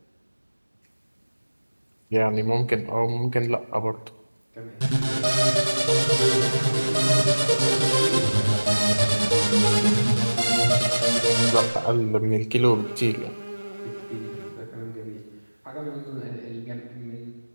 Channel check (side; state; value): both; inverted; correlation -1.00